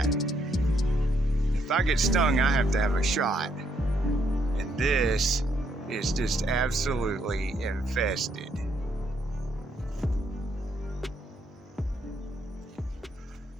If I get stung, I have to have a shot. And this is just absolutely infested.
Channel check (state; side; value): normal; both; correlation 0.74